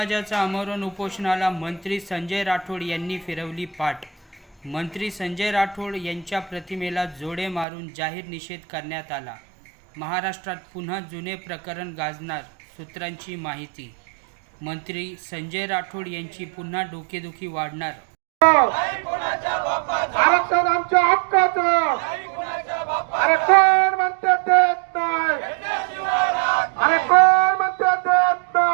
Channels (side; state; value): left; drops out; at 7.7 s